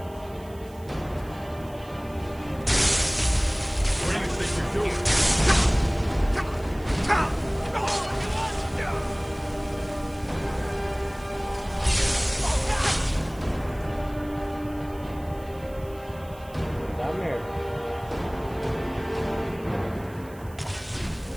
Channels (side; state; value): right; noise; hiss, 24 dB below the sound